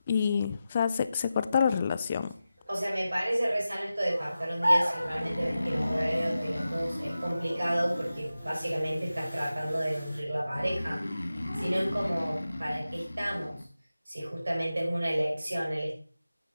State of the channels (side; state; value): both; inverted; correlation -0.93